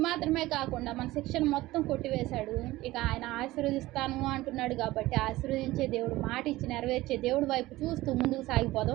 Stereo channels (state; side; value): quieter; left; 17.9 dB